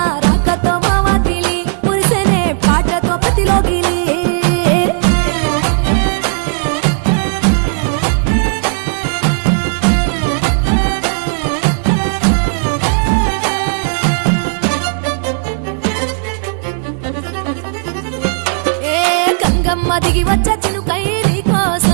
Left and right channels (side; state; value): left; silent; 60 dB below the other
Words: రాకతో మావాకిలి మురిసెనే పాటతో ప్రతిలోగిలి గంగమ్మ దిగి వచ్చ చినుకై నీ